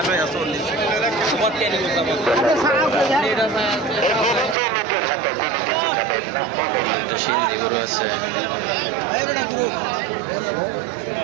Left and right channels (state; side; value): drops out; left; at 4.5 s